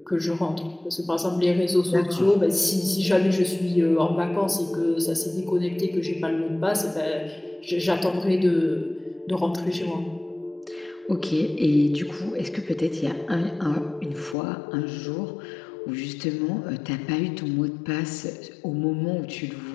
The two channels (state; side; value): drops out; right; at 14.4 s